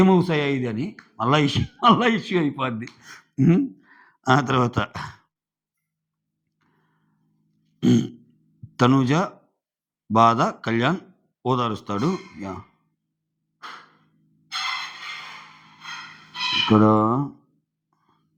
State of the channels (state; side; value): identical; both; correlation 1.00